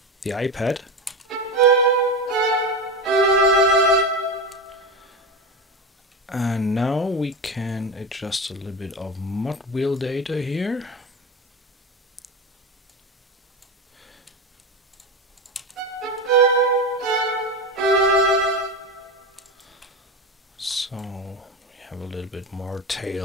the iPad. And now we can adjust a little bit of mod wheel data here. So we have a little bit more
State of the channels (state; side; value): normal; both; correlation 0.20